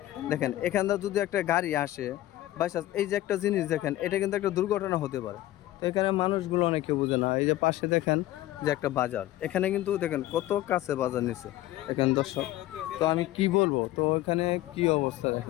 দেখেন এখানটা যদি একটা গাড়ি আসে বাইচান্স, এই যে একটা জিনিস দেখেন, এটা কিন্তু একটা দুর্ঘটনা হতে পারে। তো এখানে মানুষগুলো অনেকে বুঝে না। এই যে পাশে দেখেন যে একটা বাজার, এখানে কিন্তু দেখেন কত কাছে বাজার নিচ্ছে দেখেন দর্শক। তো আমি কি বলবো, তো এখানে কি অবস্থা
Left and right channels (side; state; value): right; quieter; 15.4 dB